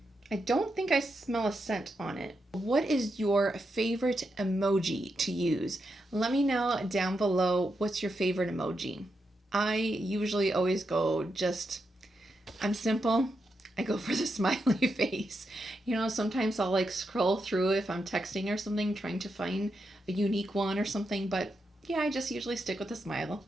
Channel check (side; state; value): both; normal; correlation 0.85